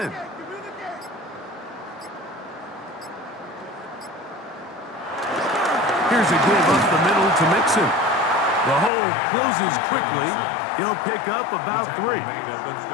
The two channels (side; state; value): right; drops out; at 8.9 s